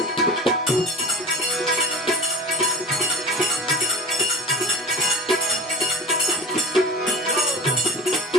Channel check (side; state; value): both; normal; correlation 0.36